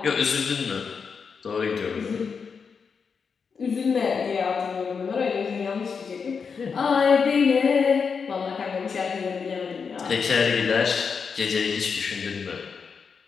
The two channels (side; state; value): right; quieter; 5.8 dB